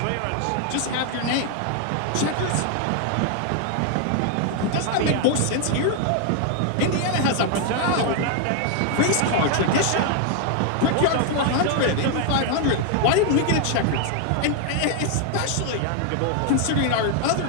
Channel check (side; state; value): both; different; correlation 0.00